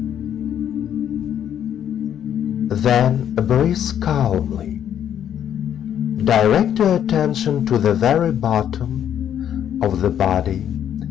Then breathe calmly. Direct your attention to the very bottom of the body,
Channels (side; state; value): right; quieter; 9.7 dB